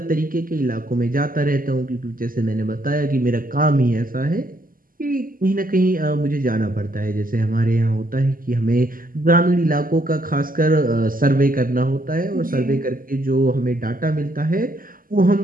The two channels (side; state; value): left; late; 0.41 ms